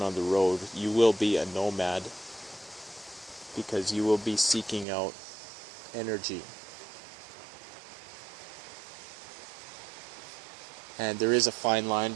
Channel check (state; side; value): drops out; left; at 4.9 s